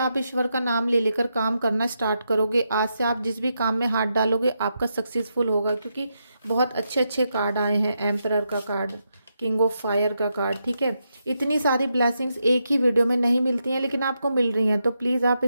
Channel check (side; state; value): both; inverted; correlation -0.84